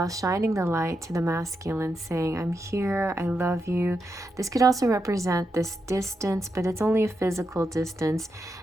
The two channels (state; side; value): normal; both; correlation 0.85